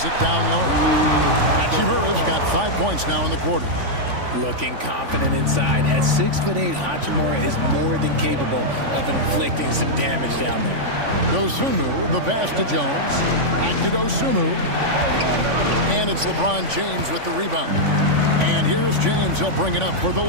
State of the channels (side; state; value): left; late; 3.5 ms